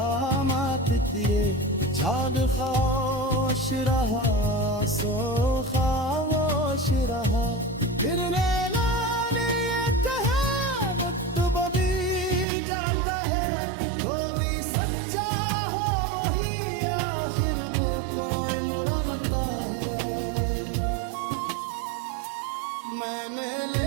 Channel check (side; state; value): left; drops out; at 12.5 s